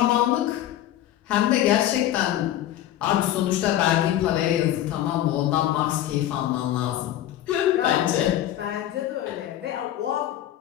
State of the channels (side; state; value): right; quieter; 12.7 dB